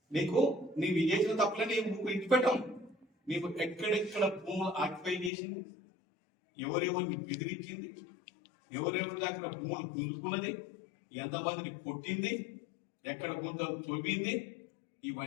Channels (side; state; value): right; drops out; at 5.3 s